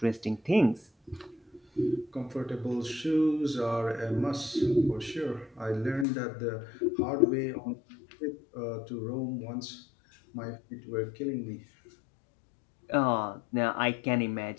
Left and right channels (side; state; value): right; drops out; at 6.1 s